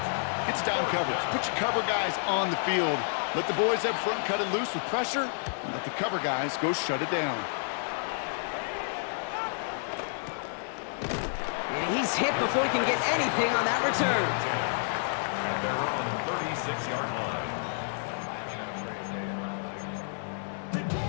it's down coverage. Put your cover guys on the field. Let the boys up front cut it loose with pressure, and let the cover guys go shut it down. And he's hit before he can get anything on that return. And they're on the 36-yard line.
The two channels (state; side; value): silent; right; digital silence